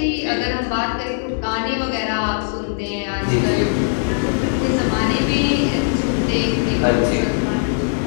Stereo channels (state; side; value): silent; right; digital silence